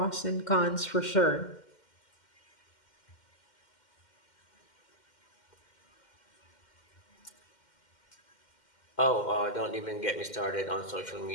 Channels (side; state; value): right; late; 2.1 ms